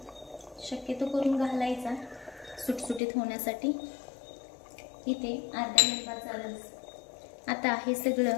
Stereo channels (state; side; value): drops out; right; at 3.0 s